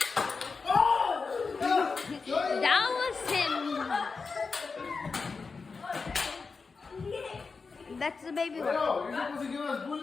That was him. That's the baby one. No, you're supposed to give us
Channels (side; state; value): right; quieter; 4.6 dB